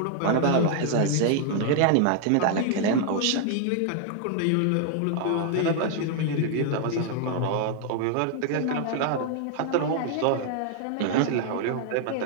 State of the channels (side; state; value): both; different; correlation 0.00